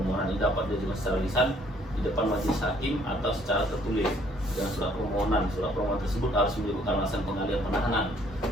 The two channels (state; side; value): normal; both; correlation 0.63